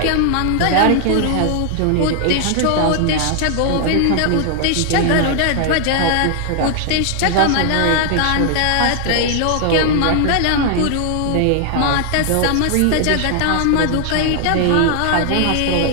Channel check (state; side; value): different; both; correlation 0.00